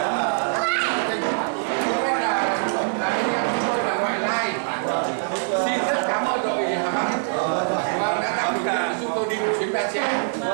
xin rất cảm ơn đội Hà Bắc đã tạo điều kiện giúp tôi đi một chuyến Ba Trẻ.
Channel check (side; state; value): left; silent; digital silence